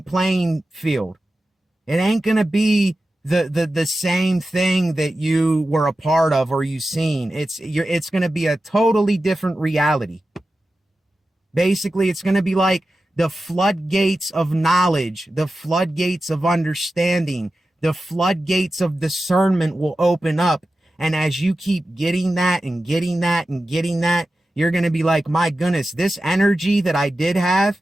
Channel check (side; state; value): both; normal; correlation 0.93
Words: playing field. It ain't going to be the same thing that you were a part of or you seen. It's going to be a totally different reality. Basically, it's going to be like the floodgates of knowledge, the floodgates of understanding, the floodgates of discernment will open up. And as you keep getting that and getting that and getting that, you're going to be like, my goodness, this energy that I did have,